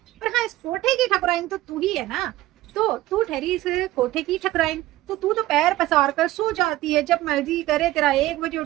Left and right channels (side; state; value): left; quieter; 16.2 dB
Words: पर हाँ इस कोठे की ठकुराइन तो तू ही है ना। तो तू ठहरी इस कोठे की ठकुराइन, तो तू तो पैर पसार कर सो जाती है जब मर्जी करे, तेरा 1 बजे